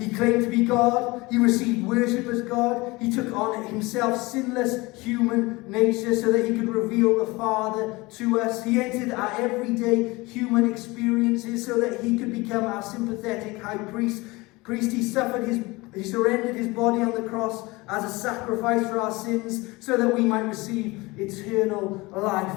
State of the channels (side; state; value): right; quieter; 22.9 dB